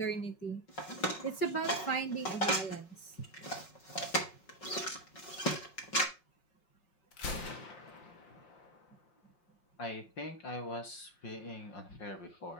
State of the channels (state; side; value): late; right; 5.4 ms